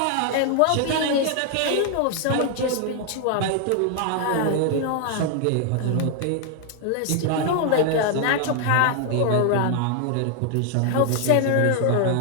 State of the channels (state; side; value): different; both; correlation 0.00